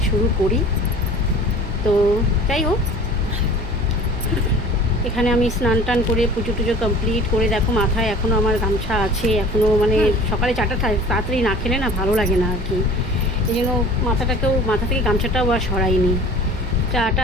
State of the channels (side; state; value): right; noise; hum, 10 dB below the sound